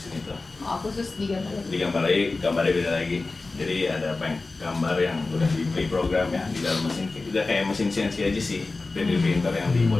itu. Oh, khusus di gambar lagi. Digambar lagi, gambarnya beda lagi. Jadi ada gambar yang udah di pre-program ya di dalam mesin. Udah kayak mesin CNC aja sih, 3D printer yang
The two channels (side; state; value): right; quieter; 3.5 dB